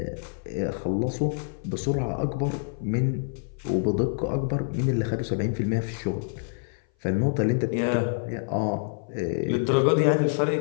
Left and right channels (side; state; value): right; silent; 57 dB below the other